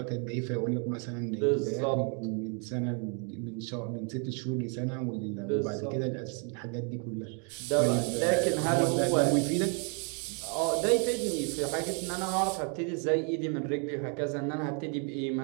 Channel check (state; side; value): quieter; left; 39.2 dB